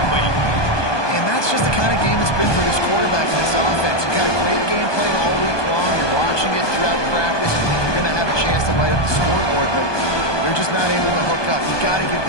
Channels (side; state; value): right; late; 1.2 ms